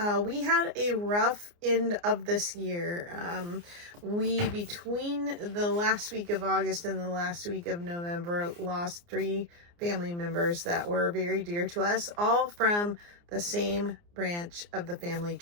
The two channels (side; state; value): left; late; 29 ms